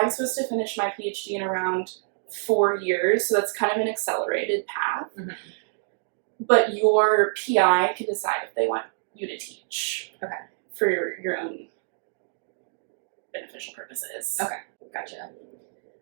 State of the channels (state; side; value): silent; left; digital silence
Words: supposed to finish my PhD in around 4 years, so that's kind of an accelerated path. Mm-hmm. But your PI can decide if they want you to teach. Okay. For your own beneficial purposes. Okay, gotcha.